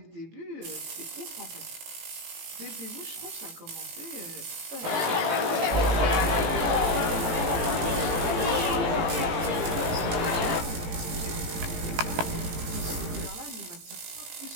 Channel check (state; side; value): late; left; 18 ms